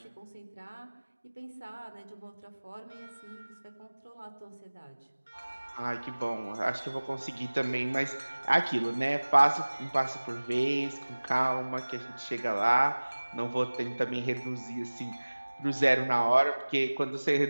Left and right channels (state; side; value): inverted; both; correlation -1.00